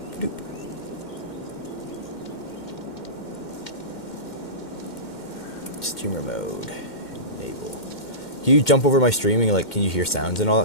doop. Streamer mode. Enable. Can you jump over my streaming? Like, can you hear sounds and all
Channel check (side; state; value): right; late; 2.1 ms